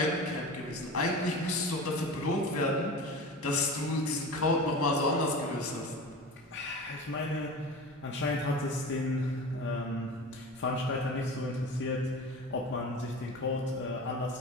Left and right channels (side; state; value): both; normal; correlation 0.32